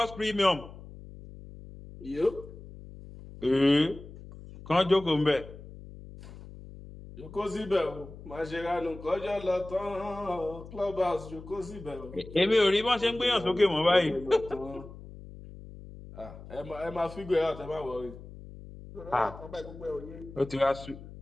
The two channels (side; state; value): left; noise; hum, 16 dB below the sound